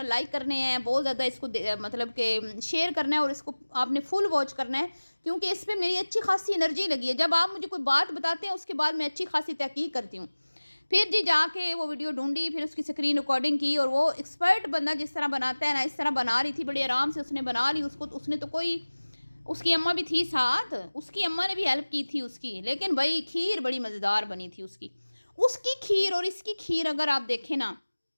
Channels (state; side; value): inverted; both; correlation -1.00